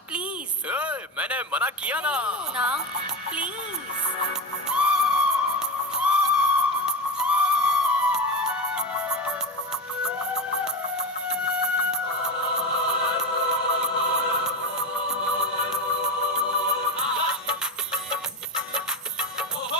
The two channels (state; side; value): normal; both; correlation 0.20